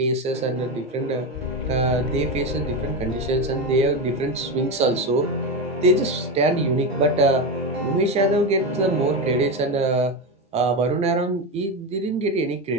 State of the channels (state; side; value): normal; both; correlation 0.15